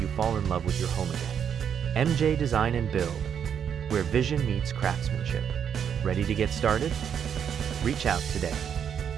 fall in love with your home again. MJ Design and Build, where vision meets craftsmanship. Ready to get started? Reach out today.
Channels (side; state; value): left; quieter; 8.1 dB